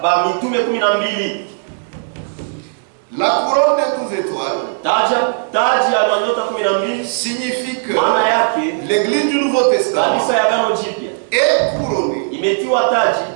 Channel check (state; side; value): silent; left; digital silence